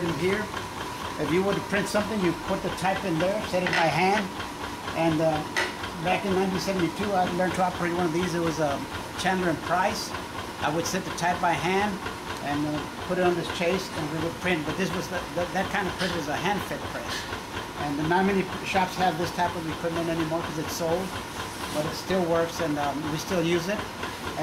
them here. If you were to print something, you put the type in there, set it by hand. And back in 1972, I learned to operate one of these. It was Chandler and Price. I would set the type by hand and put it on this chase, and we would print. But this was that kind of print was a hand-fed press. And not many shops have this type of equipment anymore because it's sold. But it still works, and we still use it.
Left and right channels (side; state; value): both; identical; correlation 1.00